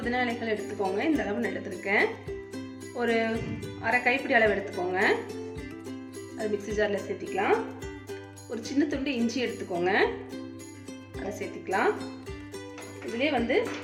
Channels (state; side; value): identical; both; correlation 1.00